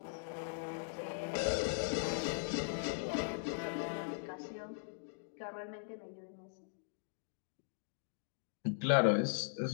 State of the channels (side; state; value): right; silent; digital silence